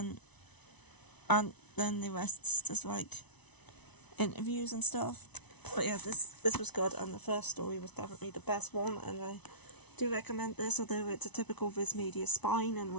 then the rest's just like interviews and stuff. But yeah, this was good, and the first story was definitely the best one, and I do recommend this, although it's a typical Viz Media spine in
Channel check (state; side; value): late; right; 1.0 ms